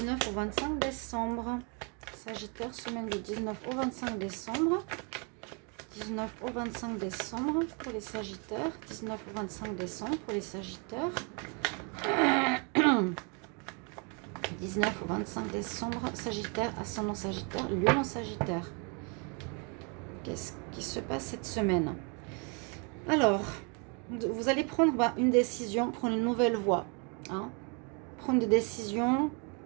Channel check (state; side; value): quieter; left; 35.1 dB